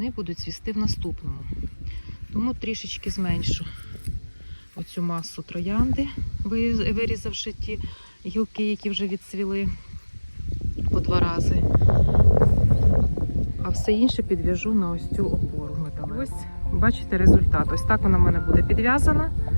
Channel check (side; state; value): both; inverted; correlation -1.00